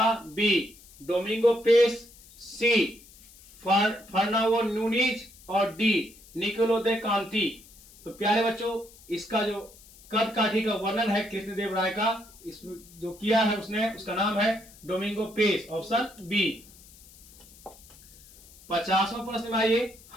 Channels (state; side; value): noise; left; hiss, 23 dB below the sound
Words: बी डोमिंगो पेस, सी फर्नांडो नूनीज और डी निकोलो दे कांति। तो प्यारे बच्चों इसका जो कद काठी का वर्णन है कृष्णदेव राय का, इसमें जो किया है उसने, उसका नाम है डोमिंगो पेस, ऑप्शन बी। 50वां प्रश्न में आइए